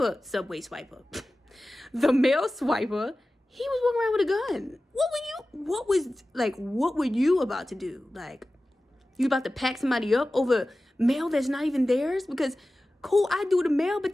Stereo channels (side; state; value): both; normal; correlation 0.96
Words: the mail swiper. He was walking around with a gun. What were you about to do? Like, you about to pack somebody up over mail that's not even theirs? Because, cool, I do the mail, but